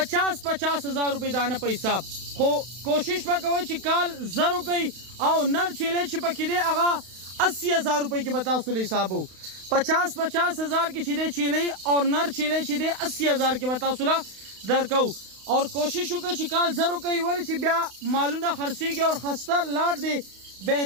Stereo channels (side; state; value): left; late; 32 ms